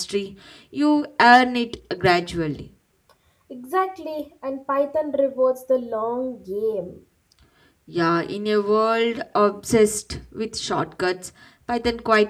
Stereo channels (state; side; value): identical; both; correlation 1.00